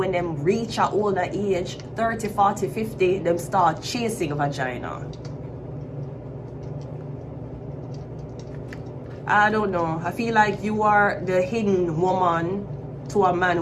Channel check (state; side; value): identical; both; correlation 1.00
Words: them reach a older age, 30, 40, 50, them start chasing vagina. I don't know. I feel like you are the hidden woman to a man